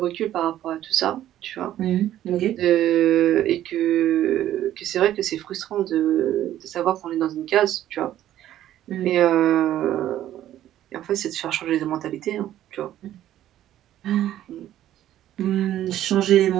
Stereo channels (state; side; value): quieter; left; 12.5 dB